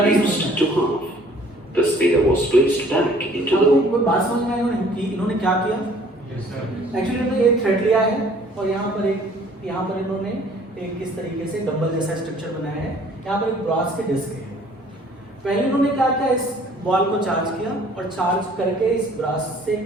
to half. The sphere was placed back into the. कोई बात समझ में आई इन्होंने क्या किया? एक्चुअली इन्होंने एक थ्रेड लिया है और यहाँ पर इन्होंने एक किस तरीके से डंबल जैसा स्ट्रक्चर बनाया है। यहाँ पर एक ब्रास के डिस्क है। पहले इन्होंने क्या किया, इस बॉल को चार्ज किया और चार्ज करके इस ब्रास से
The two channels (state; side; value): normal; both; correlation 0.55